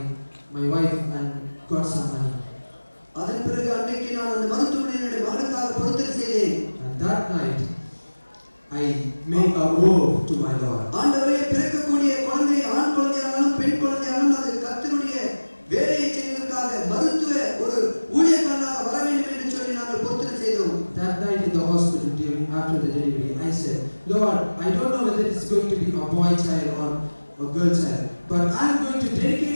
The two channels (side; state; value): both; inverted; correlation -1.00